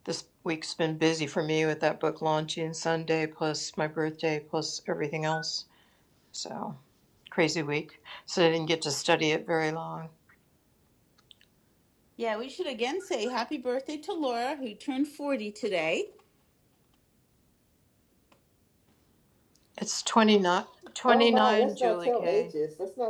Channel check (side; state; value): both; identical; correlation 1.00